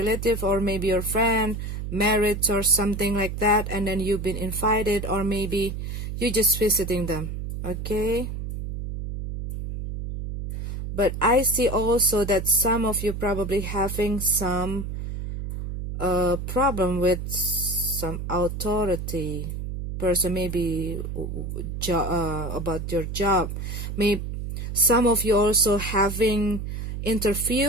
or maybe your friend, marriage or something like that, and then you've been invited, or maybe you're just visiting them, okay. But I see also that some of you probably having some problem with some authority person, maybe about your job. Maybe some of you also having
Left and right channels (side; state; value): right; noise; hum, 5 dB below the sound